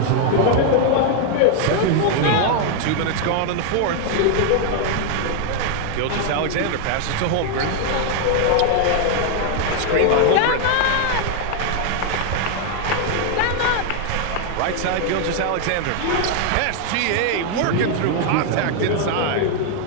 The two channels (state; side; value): different; both; correlation 0.00